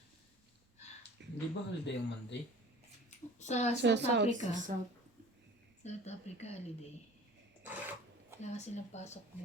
Hindi ba holiday yung Monday? Sa Sa South South, Africa. Sa South. South Africa holiday. Wala kasi silang pasok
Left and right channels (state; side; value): normal; both; correlation 0.44